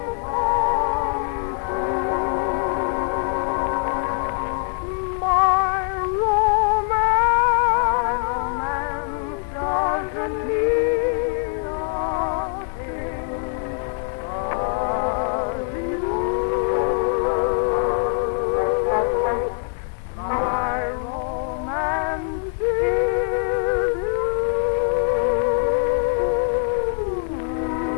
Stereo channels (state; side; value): quieter; right; 38.2 dB